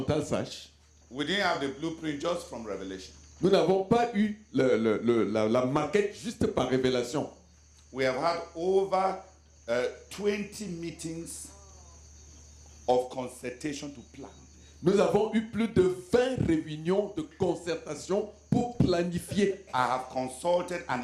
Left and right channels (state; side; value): identical; both; correlation 1.00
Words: sache, We didn't have the blueprint just from Revelation. nous n'avons pas eu la maquette juste par révélation. We have had over 20 meetings of consultation to plan. Nous avons eu plus de 20 réunions de concertation pour planifier. I have consulted an